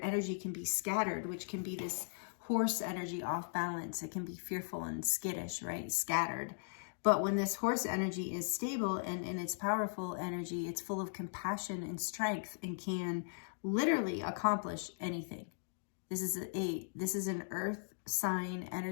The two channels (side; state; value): right; silent; digital silence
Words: energy can be scattered, which can be this horse energy off balance. It can be fearful and skittish, right? Scattered. But when this horse energy is stable and in its powerful energy, it's full of compassion and strength and can literally accomplish anything. This is an earth sign